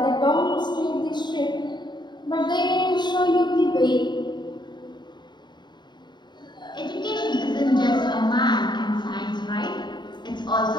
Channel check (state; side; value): late; right; 0.21 ms